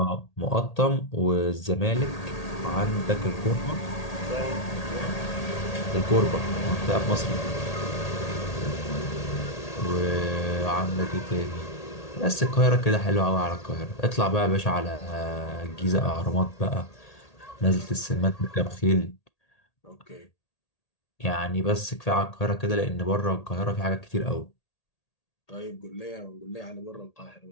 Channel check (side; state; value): right; late; 1.8 ms